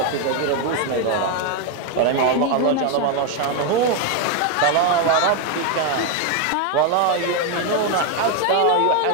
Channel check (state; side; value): different; both; correlation 0.01